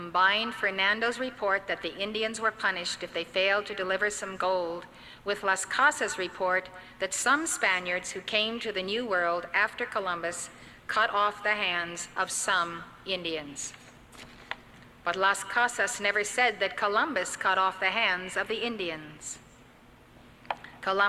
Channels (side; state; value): both; identical; correlation 1.00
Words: Fernando's report that the Indians were punished if they failed to deliver some gold with Las Casas' report that some Spaniards who came to the New World after Columbus cut off the hands of some Indians. But Las Casas never said that Columbus cut off the hands of the Indians.